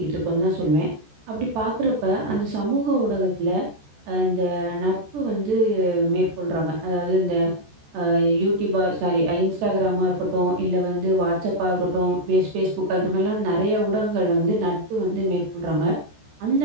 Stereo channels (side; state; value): left; late; 14 ms